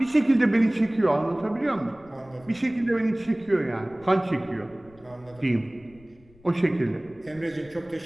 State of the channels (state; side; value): noise; left; rumble, 27 dB below the sound